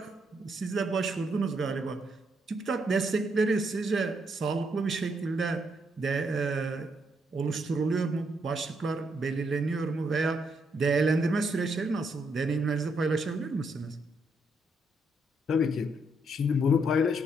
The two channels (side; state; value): both; normal; correlation 0.76